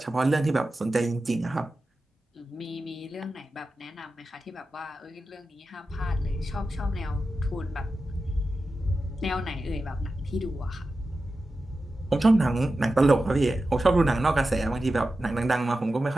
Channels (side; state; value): both; normal; correlation 0.93